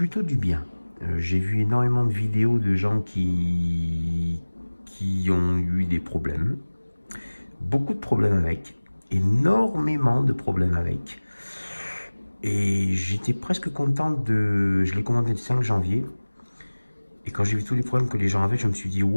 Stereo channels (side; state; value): both; inverted; correlation -1.00